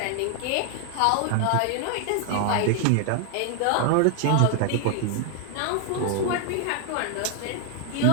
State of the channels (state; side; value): different; both; correlation 0.00